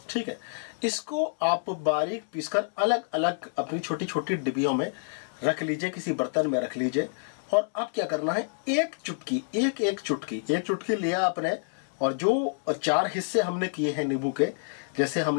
ठीक है, इसको आप बारीक पीसकर अलग अलग अपनी छोटी छोटी डिब्बियों में रख लीजिए, किसी बर्तन में रख लीजिए। और अब क्या करना है, एक चुटकी लिया आपने, और जो 4 हिस्से हमने किए हैं नींबू के, जैसे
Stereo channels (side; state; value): right; silent; digital silence